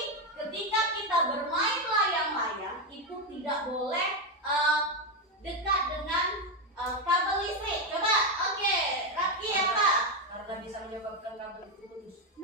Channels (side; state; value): both; normal; correlation 0.08